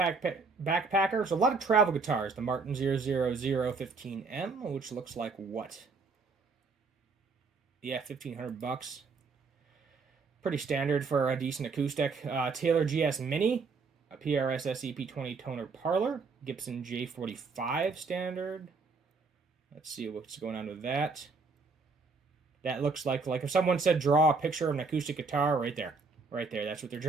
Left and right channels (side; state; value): left; quieter; 4.4 dB